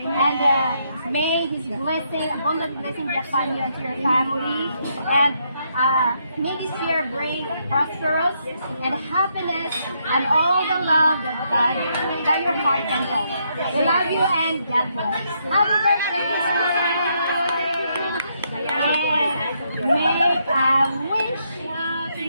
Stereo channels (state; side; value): inverted; both; correlation -0.76